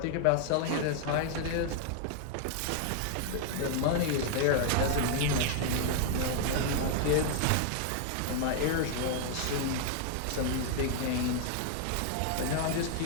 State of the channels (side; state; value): both; different; correlation 0.00